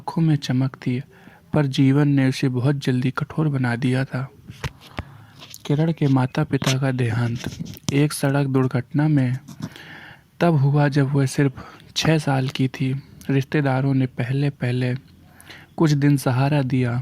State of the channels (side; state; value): both; identical; correlation 1.00